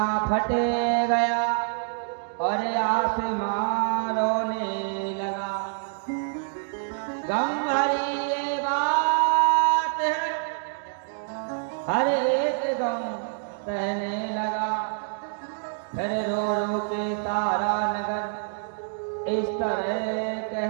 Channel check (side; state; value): left; silent; digital silence